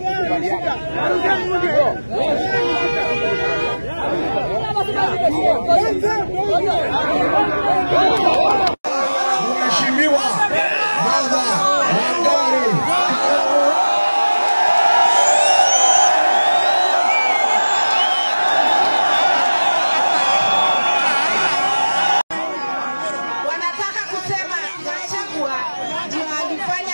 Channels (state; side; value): inverted; both; correlation -1.00